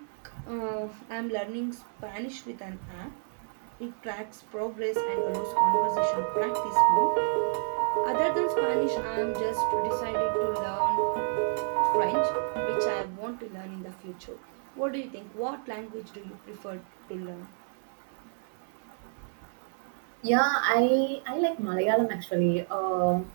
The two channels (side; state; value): left; silent; 58 dB below the other